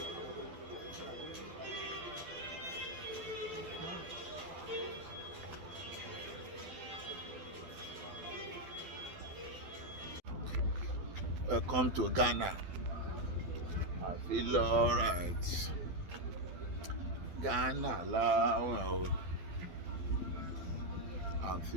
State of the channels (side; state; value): left; late; 12 ms